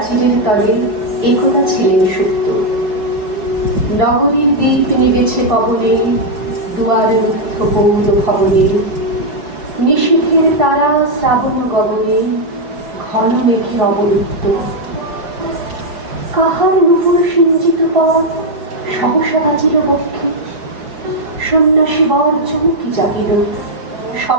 তলে একদা ছিলেন সুপ্ত। নগরীর দীপ নিবেছে পবনে, দুয়ার রুদ্ধ গৌর ভবনে। নিশীথের তারা শ্রাবণ গগনে, ঘন মেঘে অবরুদ্ধ। কাহার নুপুর সিঞ্চিত পথ সহসা বাজিল বক্ষে। সন্ন্যাসী বর চমকি জাগিল,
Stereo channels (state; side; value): late; left; 5.3 ms